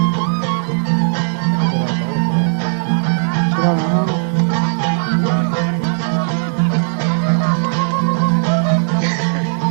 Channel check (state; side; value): silent; left; digital silence